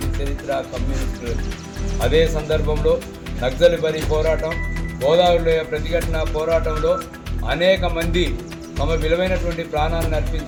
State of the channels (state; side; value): identical; both; correlation 1.00